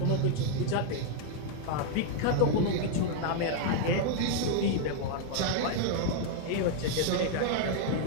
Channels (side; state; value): both; different; correlation 0.00